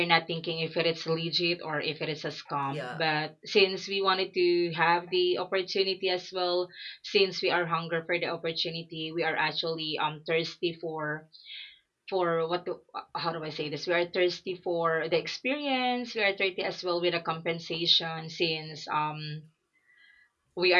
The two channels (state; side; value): identical; both; correlation 1.00